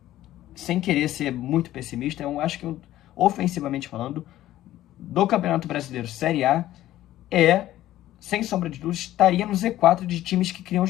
sem querer ser muito pessimista, eu acho que, ofensivamente falando, do Campeonato Brasileiro Série A, sem sombra de dúvidas, estaria no Z4 de times que criam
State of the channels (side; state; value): right; quieter; 14.1 dB